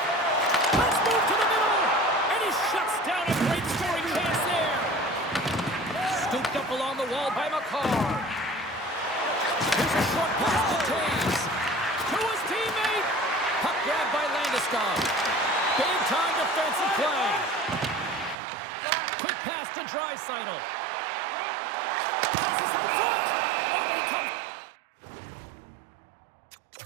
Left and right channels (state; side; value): drops out; left; at 18.4 s